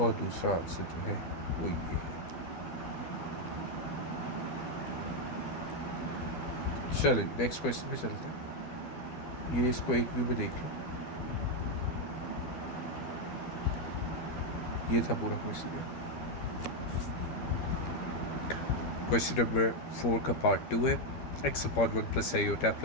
दूसरा आंसर जो है वो ये है। चलिए नेक्स्ट क्वेश्चन पे चलते हैं। ये इसको एक व्यू में देख लो, ये था पूरा क्वेश्चन। क्वेश्चन नंबर 4 का पार्ट 2 है, x upon 1 plus iota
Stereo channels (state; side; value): late; right; 13 ms